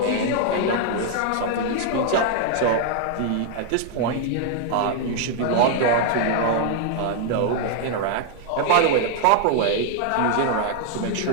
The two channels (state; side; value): different; both; correlation 0.00